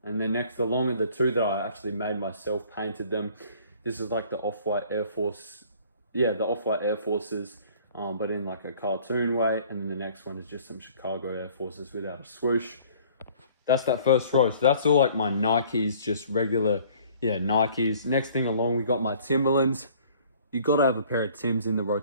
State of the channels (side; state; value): both; inverted; correlation -0.54